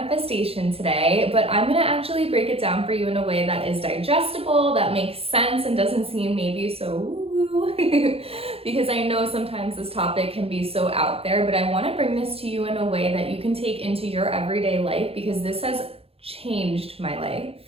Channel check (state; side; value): late; left; 0.28 ms